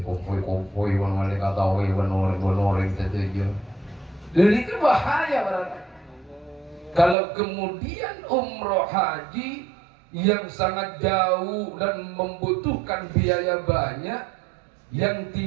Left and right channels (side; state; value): left; drops out; at 7.2 s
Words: kompoi wani kata orang tertuju. Dan itu bahaya berarti. Kalau kemudian umroh haji yang sangat jauh dan membutuhkan biaya banyak, yang